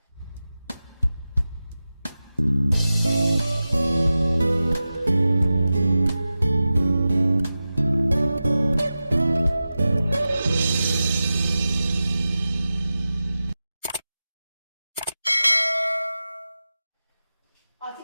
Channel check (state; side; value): inverted; both; correlation -0.94